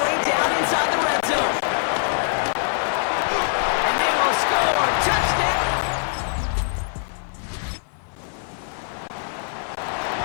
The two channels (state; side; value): silent; right; 63 dB below the other